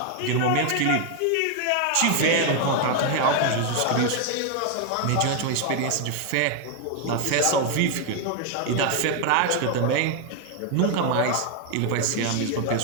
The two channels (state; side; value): different; both; correlation 0.01